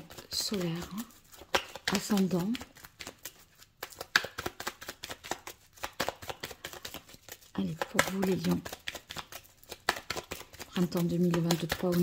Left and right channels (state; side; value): identical; both; correlation 1.00